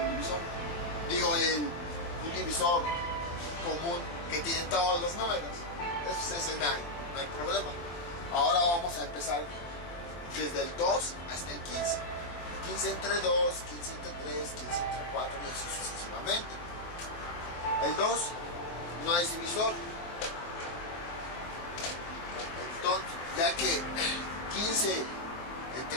divisor. Digo, un divisor común que tiene todos los números. Ese no hay problema. Ahora vamos a empezar desde el 2 hasta el 15. 15 entre 2, 15 entre 3, 15 entre 4 y así sucesivamente. El 2 no es divisor. Entonces, ya que 15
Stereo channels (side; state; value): right; late; 23 ms